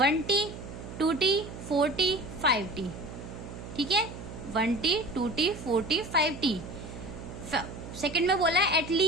2T 4T 5T। ठीक है, 1T 2T 4T 5T। Second में बोला है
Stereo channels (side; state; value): right; noise; hum, 11 dB below the sound